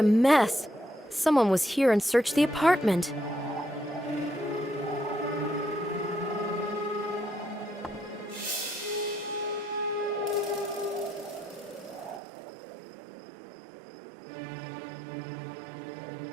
mess. Someone was here and searched the apartment.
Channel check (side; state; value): left; drops out; at 12.2 s